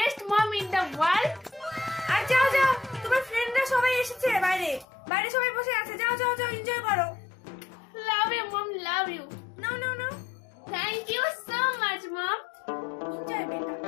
mom in the world. আর যাও যাও, তোমার ফ্রেন্ডরা সবাই এসেছে, বাইরে বাইরে সবাই বসে আছে, যাও যাও যাও, এনজয় করো। Love you mom, love you. No no no, thank you so much mom. Enjoy বেটা।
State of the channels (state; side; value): drops out; right; at 4.9 s